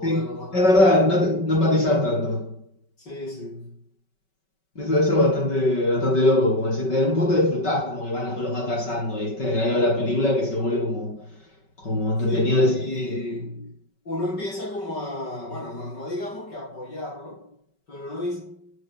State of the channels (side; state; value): right; late; 5.3 ms